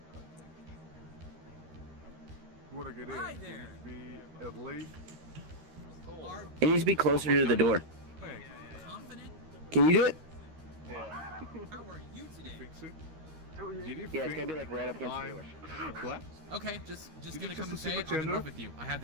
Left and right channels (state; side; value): late; left; 13 ms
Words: Hi there. Be at least. It needs to be closer to the door. Can you do it? Yeah, it's gotta be like right up against the door. What? Okay, just gonna come and assume say a I'm in gender? love with you. I have